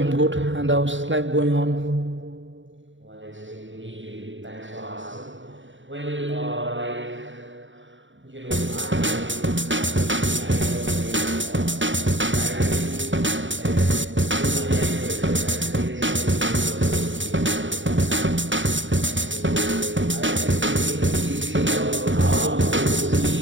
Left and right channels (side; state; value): left; late; 0.55 ms